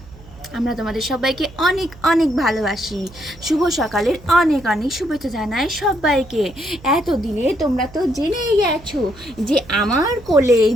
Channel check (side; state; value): right; noise; hum, 21 dB below the sound